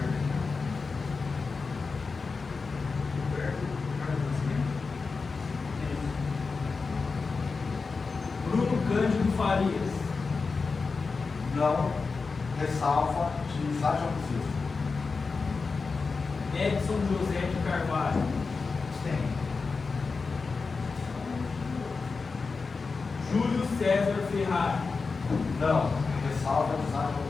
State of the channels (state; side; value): quieter; right; 4.5 dB